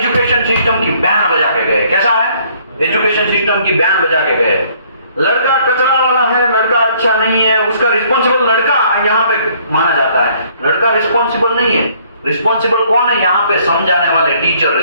सिस्टम की बैंड बजा के गए। कैसा है, एजुकेशन सिस्टम की बैंड बजा के गए। लड़का कचरा वाला है, लड़का अच्छा नहीं है, उसका रिस्पॉन्सिबल लड़का यहाँ पे माना जाता है, लड़का रिस्पॉन्सिबल नहीं है। रिस्पॉन्सिबल कौन है यहाँ पे, समझाने वाले टीचर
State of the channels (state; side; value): inverted; both; correlation -0.62